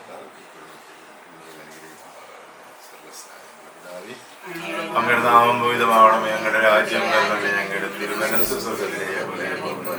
അങ്ങയുടെ നാമം ഭൂതമാവണമേ, ഞങ്ങളുടെ രാജ്യം വരണമേ, ഞങ്ങളുടെ തിരുമനസ്സ് സ്വർഗ്ഗത്തിലെ പോലെ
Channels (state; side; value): identical; both; correlation 1.00